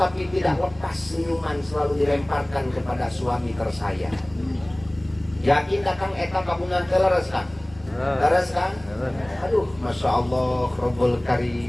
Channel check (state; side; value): noise; left; rumble, 24 dB below the sound